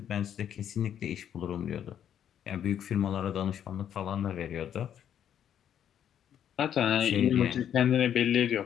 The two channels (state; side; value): quieter; right; 9.6 dB